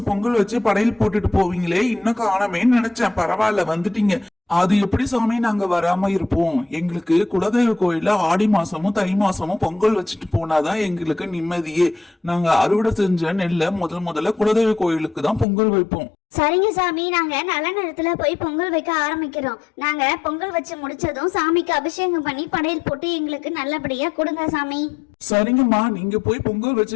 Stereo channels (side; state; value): right; drops out; at 15.5 s